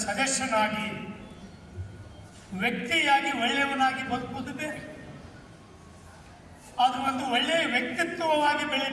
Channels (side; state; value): both; identical; correlation 1.00